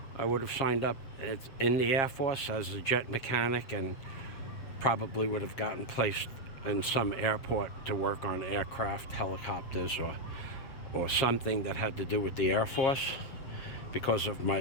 I would have signed up in the Air Force as a jet mechanic and probably would have gotten placed in some airport to work on aircraft, helicopters, or something that had to do with the Air Force because of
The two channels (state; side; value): late; right; 7.3 ms